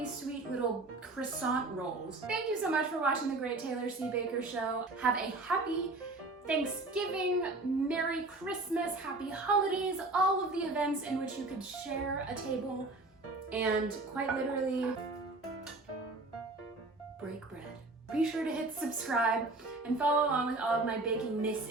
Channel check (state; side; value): quieter; left; 3.0 dB